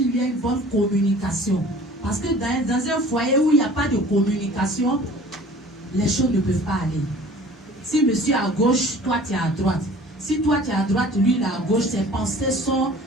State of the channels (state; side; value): normal; both; correlation 0.47